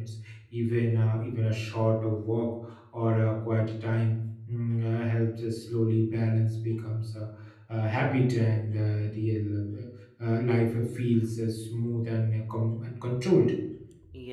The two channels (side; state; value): both; identical; correlation 1.00